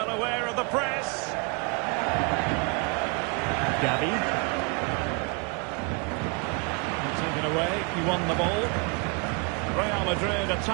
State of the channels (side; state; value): left; quieter; 33.1 dB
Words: aware of the press. Gavi. Taken away, he won the ball. Real Madrid